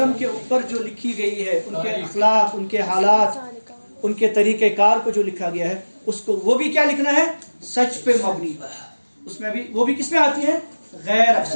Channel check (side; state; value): both; inverted; correlation -1.00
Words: के ऊपर जो लिखी गई है, उनके अखलाक, उनके हालात, उनके तरीके कार को जो लिखा गया है, उसको वो भी क्या लिखना है? सच पे मबनी। उसमें भी वो भी किसमें आती है? गैर